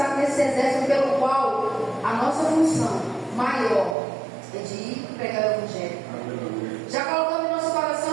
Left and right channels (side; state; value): left; drops out; at 4.0 s